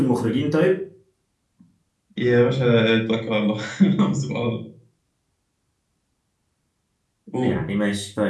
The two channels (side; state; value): both; identical; correlation 1.00